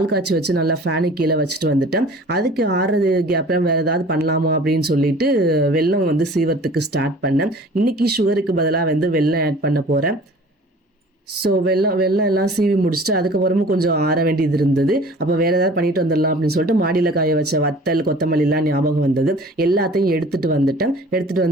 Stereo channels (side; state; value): both; normal; correlation 0.46